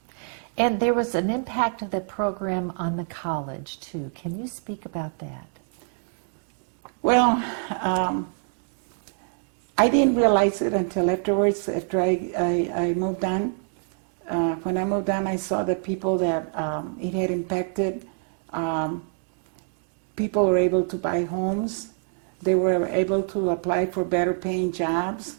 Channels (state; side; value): silent; left; 61 dB below the other